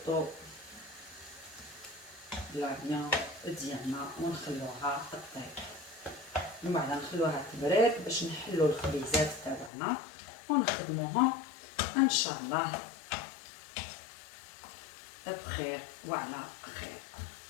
لا فيان ديالنا ونخلوها طيب، من بعد نخلوها تبرد باش نحلو الخبيزات تاعنا ونخدموهم ان شاء الله بخير وعلى خير.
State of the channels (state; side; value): drops out; right; at 9.7 s